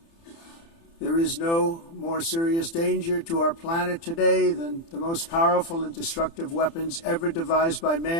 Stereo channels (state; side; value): late; right; 30 ms